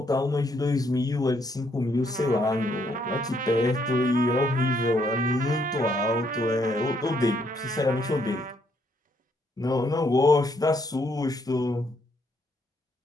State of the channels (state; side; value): normal; both; correlation 0.71